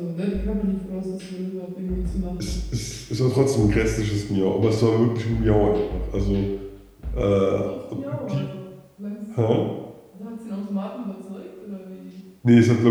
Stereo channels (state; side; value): identical; both; correlation 1.00